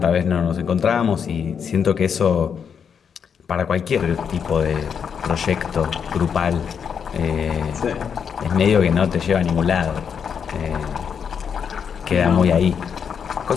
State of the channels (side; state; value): right; quieter; 7.1 dB